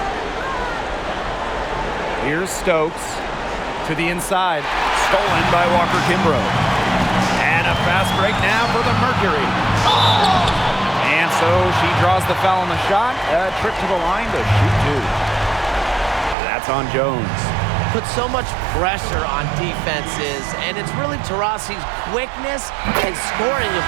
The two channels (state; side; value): drops out; left; at 16.4 s